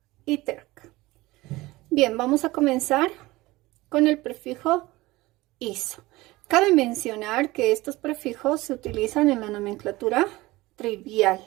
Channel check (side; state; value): left; quieter; 19.9 dB